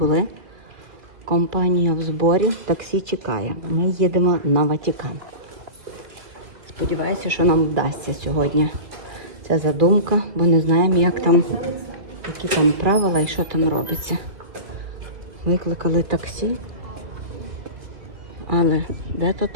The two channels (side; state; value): left; late; 2.7 ms